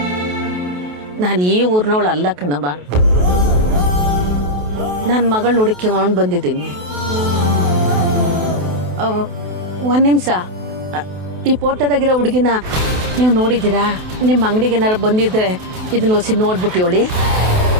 ನಾನು ಈ ಊರ್ನವಳು ಅಲ್ಲ ಕಣವ, ನನ್ನ ಮಗಳು ನೋಡಿಕೊಂಡು ಬಂದಿದ್ದೀನಿ. ಒಂದ್ ನಿಮಿಷ, ಈ ಫೋಟೋದಾಗಿರೋ ಹುಡುಗಿನ ನೀವು ನೋಡಿದ್ದೀರಾ? ನಿಮ್ಮ ಅಂಗಡಿಗೆ ಏನಾರು ಬಂದಿದ್ರೆ ಇದನ್ನ ಹೊಸಿ ನೋಡ್ಬಿಟ್ಟು ಹೇಳಿ.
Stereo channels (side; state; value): left; late; 28 ms